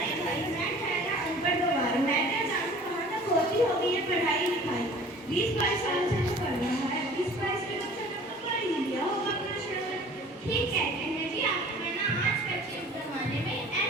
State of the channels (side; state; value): both; normal; correlation 0.47